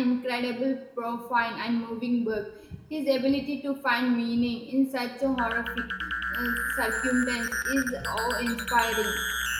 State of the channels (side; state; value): both; identical; correlation 1.00